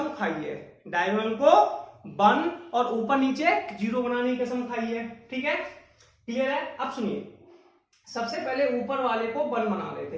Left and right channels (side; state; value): both; identical; correlation 1.00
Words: खाई है। डायगोनल को 1 और ऊपर नीचे 0 बनाने की कसम खाई है। ठीक है, क्लियर है। अब सुनिए, सबसे पहले ऊपर वाले को 1 बना